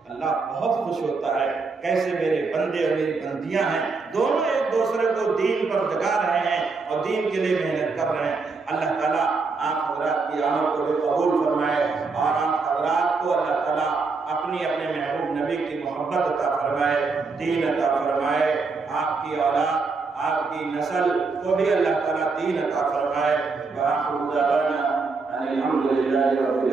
اللہ بہت خوش ہوتا ہے۔ کیسے میرے بندے اور میری بندیاں ہیں، دونوں ایک دوسرے کو دین پر جگا رہے ہیں اور دین کے لیے محنت کر رہے ہیں۔ اللہ تعالیٰ آپ حضرات کی عمل کو بھی قبول فرمائے اور آپ حضرات کو اللہ تعالیٰ اپنے محبوب نبی کی محبت عطا فرمائے، دین عطا فرمائے، آپ کی اولاد، آپ کی نسل کو بھی اللہ تعالیٰ دین عطا فرمائے۔ وآخر دعوانا ان الحمد للہ رب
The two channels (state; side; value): quieter; left; 4.3 dB